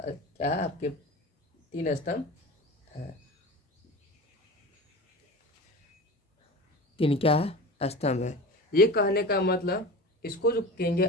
है आपके 3 स्तंभ है, 3 क्या है स्तंभ है। ये कहने का मतलब इसको जो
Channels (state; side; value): normal; both; correlation 0.33